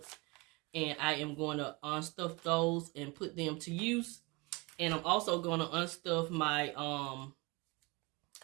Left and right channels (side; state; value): left; quieter; 26.5 dB